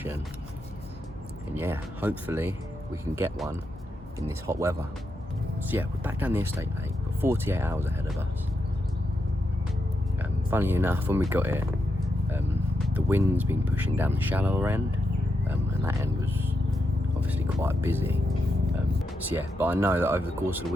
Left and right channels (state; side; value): normal; both; correlation 0.84